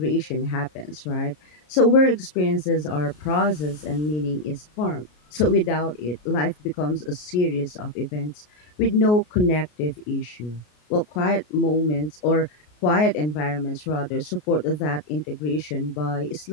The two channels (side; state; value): right; late; 33 ms